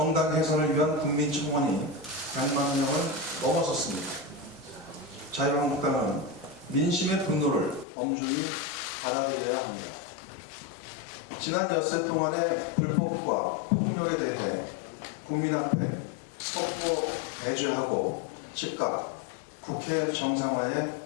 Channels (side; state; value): right; drops out; at 7.9 s